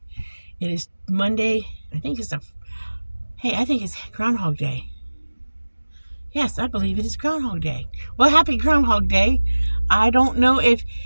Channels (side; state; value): both; inverted; correlation -1.00